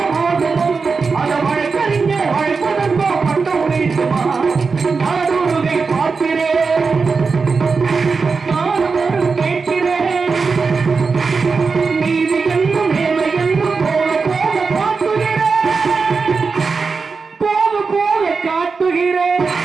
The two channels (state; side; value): quieter; left; 4.8 dB